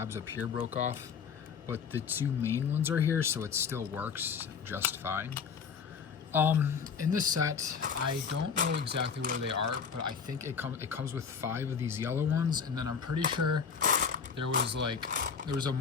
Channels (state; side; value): quieter; right; 6.3 dB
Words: up here broke off, but the two main ones are here, so it still works just fine. In this set, I don't know exactly where they are, but I think it comes with 5 of these yellow ones, and then I'm pretty sure there was a